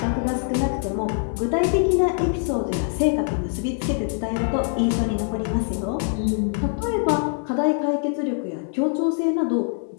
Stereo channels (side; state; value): right; silent; 56 dB below the other